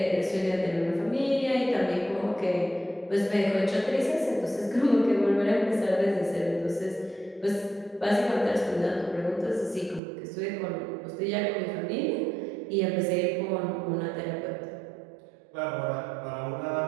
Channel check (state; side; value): drops out; left; at 10.0 s